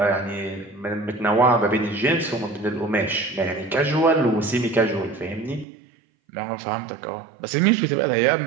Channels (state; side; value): drops out; left; at 5.7 s